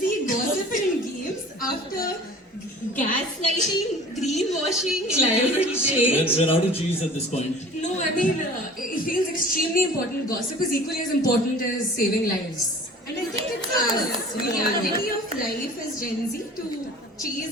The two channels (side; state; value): both; normal; correlation 0.44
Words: gossiping games after gaslighting, greenwashing, Climate and change. We're out of cheese at this point. No, I mean, it feels extremely important. Gossip is equally as important as saving lives. And I think it's a reality of life as Gen Z to